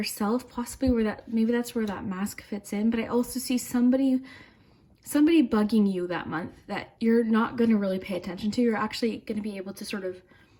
possibly maybe that's where that mask fits in. But I also see somebody bugging you that month that you're not going to really pay attention to. You're actually going to be able to sort of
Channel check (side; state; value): both; identical; correlation 1.00